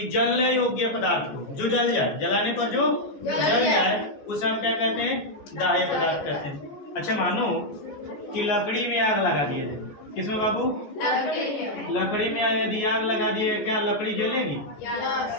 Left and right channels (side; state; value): right; late; 14 ms